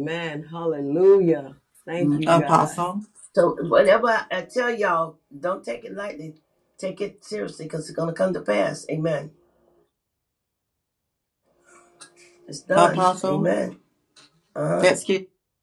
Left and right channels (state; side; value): identical; both; correlation 1.00